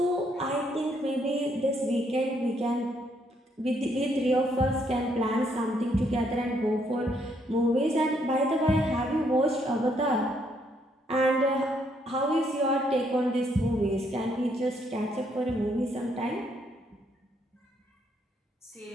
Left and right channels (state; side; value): normal; both; correlation 0.72